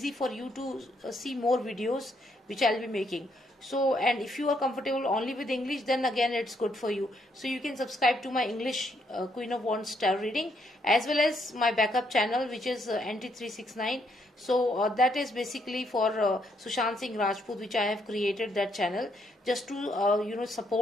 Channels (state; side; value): normal; both; correlation 0.73